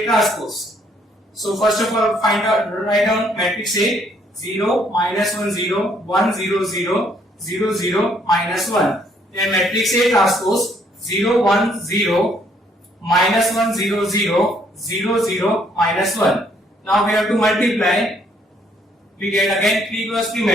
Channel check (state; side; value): normal; both; correlation 0.67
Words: transpose. So first of all, write down matrix A. 0 minus 1 0 1 0 0 0 0 minus 1. Then matrix A transpose 0 1 0 minus 1 0 0 0 0 minus 1. Now we have to multiply. We get again 3 cross 3